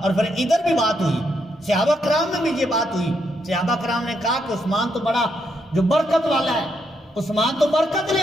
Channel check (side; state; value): both; normal; correlation 0.78